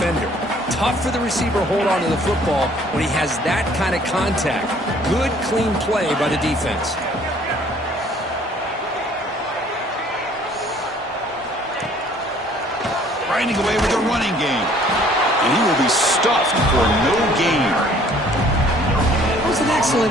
Tough for the receiver to hold on to the football when he has that kind of contact. Good, clean play by the defense. Grinding away with the running game. And he will be stuffed for no gain. It was an excellent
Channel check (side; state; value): both; normal; correlation 0.57